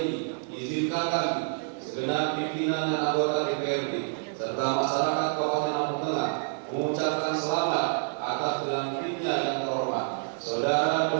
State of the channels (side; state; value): left; silent; 59 dB below the other